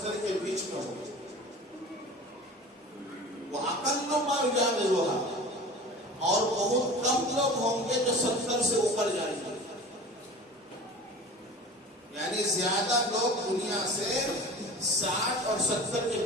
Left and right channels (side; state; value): both; normal; correlation 0.38